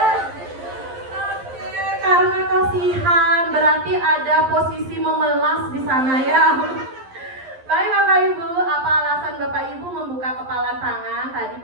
Oke, karena kasihan, berarti ada posisi memelas di sana ya. Baik Bapak Ibu, apa alasan Bapak Ibu membuka kepalan tangan? Tadi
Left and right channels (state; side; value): late; left; 11 ms